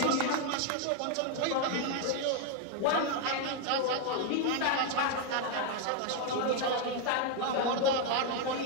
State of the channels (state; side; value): different; both; correlation 0.01